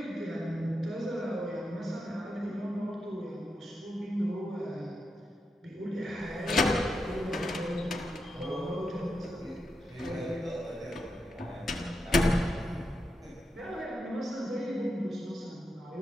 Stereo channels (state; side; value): normal; both; correlation 0.86